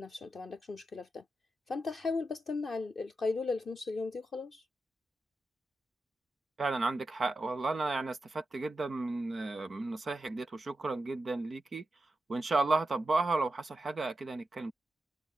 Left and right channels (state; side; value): normal; both; correlation 0.89